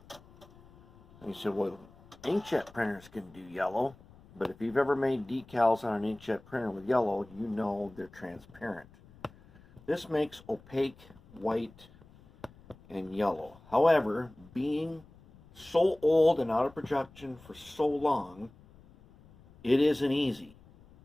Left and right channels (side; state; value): left; noise; rumble, 24 dB below the sound